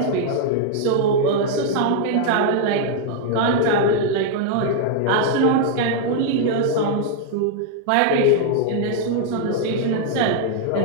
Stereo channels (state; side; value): different; both; correlation 0.00